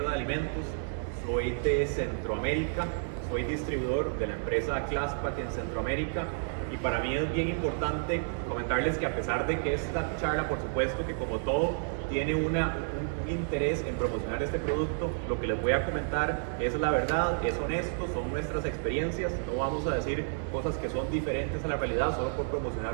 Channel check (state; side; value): silent; left; 57 dB below the other